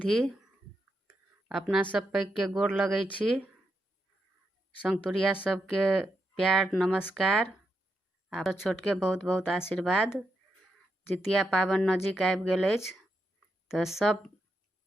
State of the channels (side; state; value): both; normal; correlation 0.83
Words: अपना सब पैघ के गोर लगै छी। संगतुरिया सबके प्यार नमस्कार आ छोट के बहुत बहुत आशीर्वाद। जितिया पाबनि नजदीक आबि गेल अछि तऽ सब